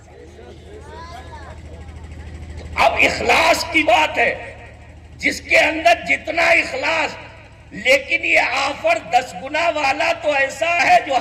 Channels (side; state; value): both; identical; correlation 1.00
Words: اب اخلاص کی بات ہے، جس کے اندر جتنا اخلاص، لیکن یہ آفر 10 گنا والا تو ایسا ہے جو